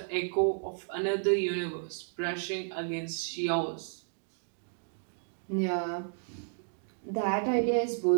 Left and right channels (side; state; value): left; silent; digital silence